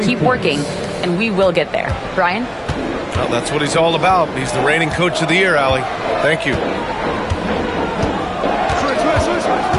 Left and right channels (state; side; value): identical; both; correlation 1.00